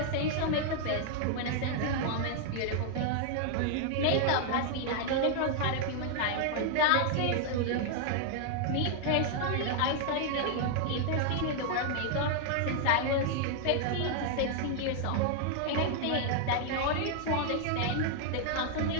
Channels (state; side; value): different; both; correlation 0.00